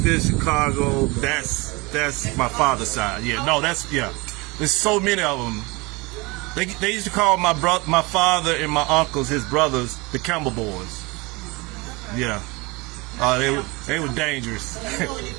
Chicago. That's my father's side. Yeah. No. There's so many of them. They used to call my father and my uncles, his brothers, the Campbell boys. Yeah. They were dangerous. Do you know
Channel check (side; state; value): left; quieter; 25.3 dB